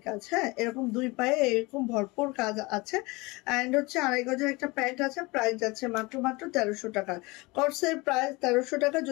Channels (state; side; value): quieter; right; 24.2 dB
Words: কাজ। হ্যাঁ, এরকম দুই পায়ে এরকম ভরপুর কাজ আছে। অ্যান্ড হচ্ছে 2.5 গজের একটা প্যান্ট আছে, প্রাইস যাচ্ছে মাত্র 1300 টাকা। কর্সের প্রাইস 1300 টাকা।